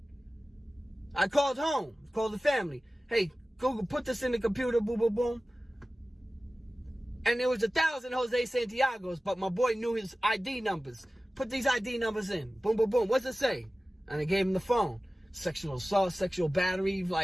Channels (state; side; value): normal; both; correlation 0.96